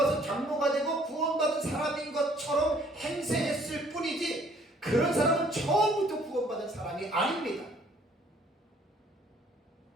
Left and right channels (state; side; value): normal; both; correlation 0.60